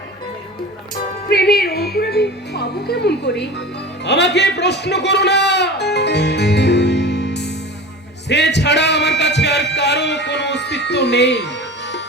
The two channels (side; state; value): both; normal; correlation 0.34